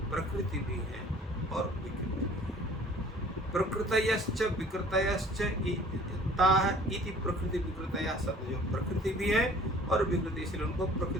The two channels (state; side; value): normal; both; correlation 0.51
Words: प्रकृति भी है और विकृति भी है। प्रकृतयश्च विकृतयश्च ताः इति प्रकृति विकृतयः सत्य, जो प्रकृति भी है और विकृति, इसलिए उनको